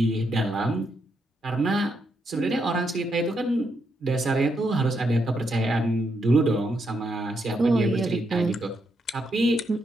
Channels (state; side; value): normal; both; correlation 0.79